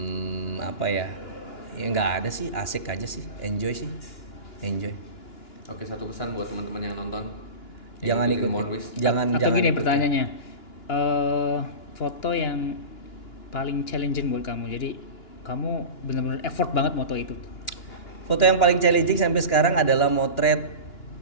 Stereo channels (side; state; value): right; late; 2.9 ms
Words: Apa ya? Ya nggak ada sih. Asik aja sih. Enjoy. Oke, satu pesan buat teman-teman yang nonton. Jangan ikutin. Monwis. Atau gini ikutin. pertanyaannya, foto yang paling challenging buat kamu. Jadi kamu benar-benar effort banget moto itu. Foto yang paling challenging sampai sekarang adalah motret